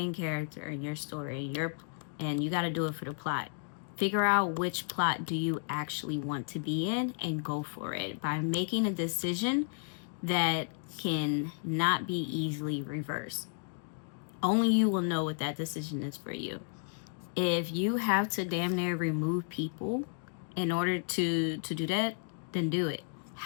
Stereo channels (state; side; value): silent; right; digital silence